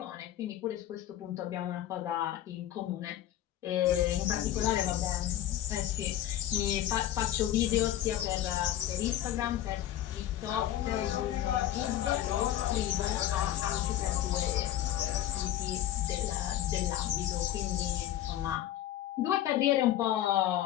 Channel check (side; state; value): right; quieter; 12.4 dB